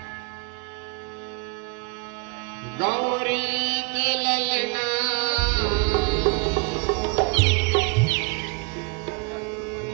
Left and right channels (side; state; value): left; quieter; 32.0 dB